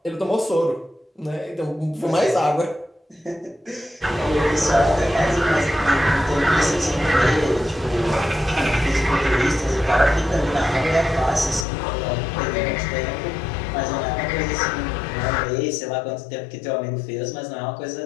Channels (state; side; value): drops out; right; at 11.7 s